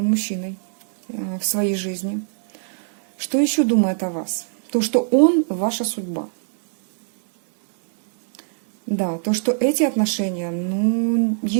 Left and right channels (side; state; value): left; silent; digital silence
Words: мужчиной в своей жизни. Что еще думает о вас? То, что он ваша судьба. Да, то, что эти отношения, ну,